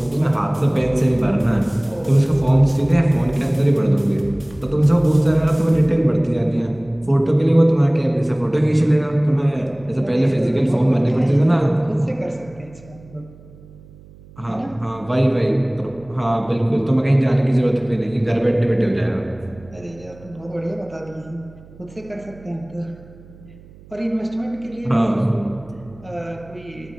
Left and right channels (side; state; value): right; noise; hum, 23 dB below the sound